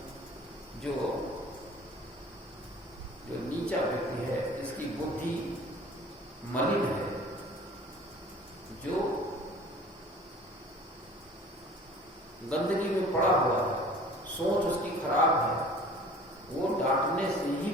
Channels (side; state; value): both; normal; correlation 0.46